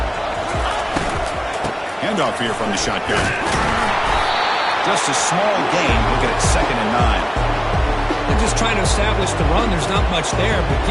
Handoff here from the shotgun. Just a small gain. Look at it, 2nd and 9. They're just trying to establish the run. There's not much there, but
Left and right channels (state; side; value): identical; both; correlation 1.00